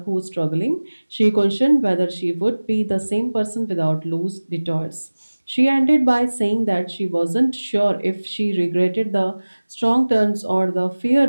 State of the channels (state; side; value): inverted; both; correlation -1.00